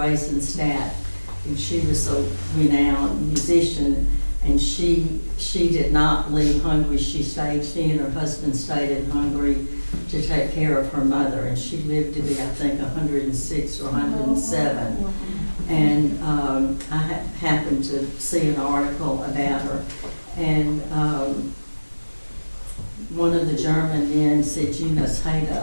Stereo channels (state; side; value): inverted; both; correlation -1.00